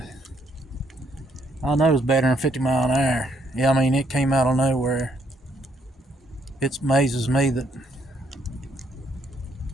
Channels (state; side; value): normal; both; correlation 0.72